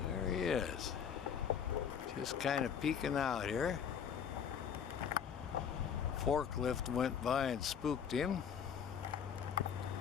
There he is. Just kind of peeking out here. Forklift went by and spooked him.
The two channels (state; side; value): quieter; right; 7.6 dB